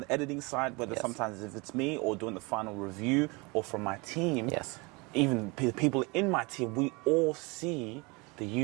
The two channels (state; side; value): quieter; left; 27.1 dB